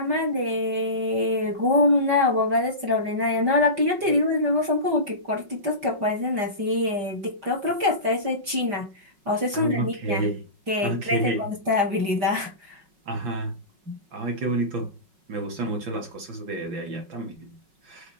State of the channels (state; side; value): late; left; 5.0 ms